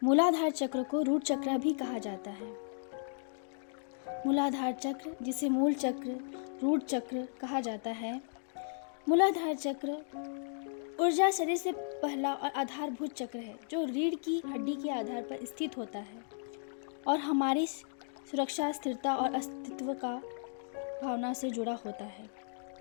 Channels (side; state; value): right; silent; digital silence